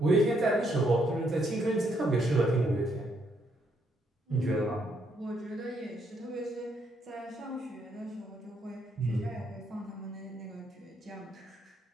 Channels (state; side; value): normal; both; correlation 0.73